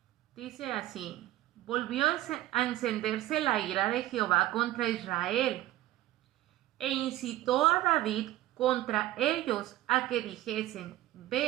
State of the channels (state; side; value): quieter; left; 15.3 dB